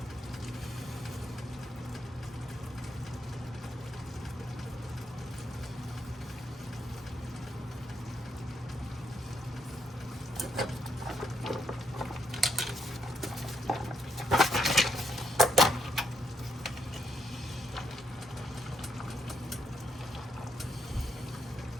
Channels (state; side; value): normal; both; correlation 0.76